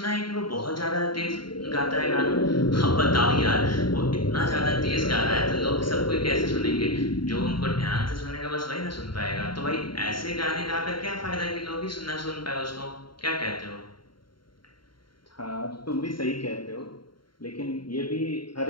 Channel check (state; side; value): late; right; 0.73 ms